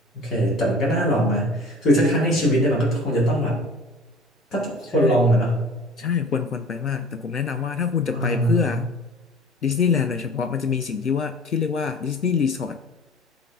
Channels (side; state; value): both; normal; correlation 0.44